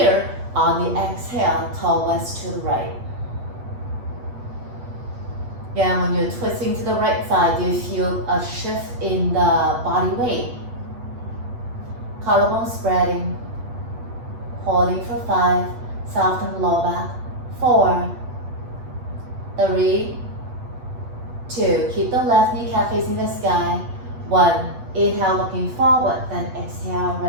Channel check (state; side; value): late; left; 8.2 ms